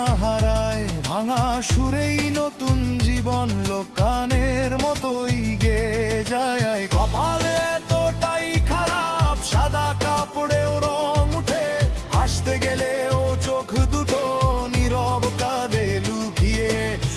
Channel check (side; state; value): both; identical; correlation 1.00